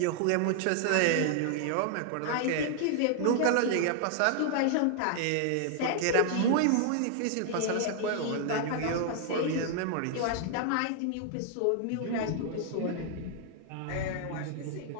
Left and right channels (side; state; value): both; different; correlation 0.00